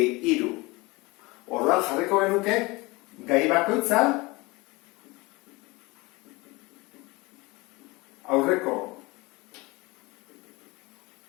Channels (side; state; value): right; quieter; 23.8 dB